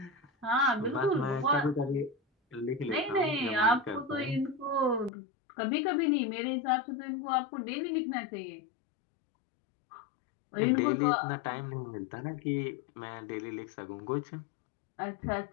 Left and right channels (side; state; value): right; drops out; at 5.1 s